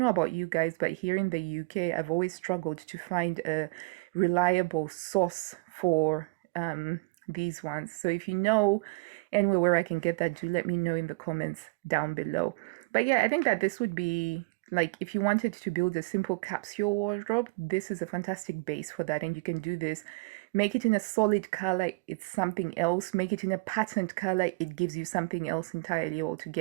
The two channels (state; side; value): quieter; left; 26.5 dB